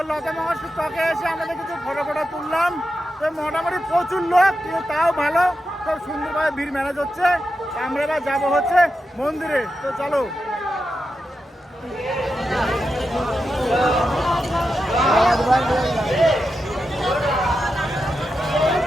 লতা মঙ্গেশকর চকে এসে আমাদের কিছু ফটো তুললাম। তো মোটামুটি প্রচুর লোক, কিন্তু তাও ভালো, খুব সুন্দরভাবে ভিড় ম্যানেজ হচ্ছে। আমরা এবার যাবো হচ্ছে মন্দিরে। তো চলো।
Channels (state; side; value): normal; both; correlation 0.89